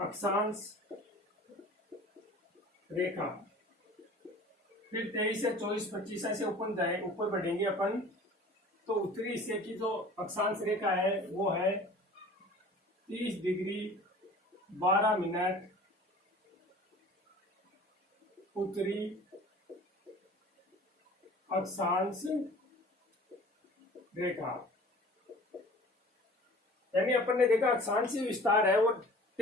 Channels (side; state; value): both; normal; correlation 0.44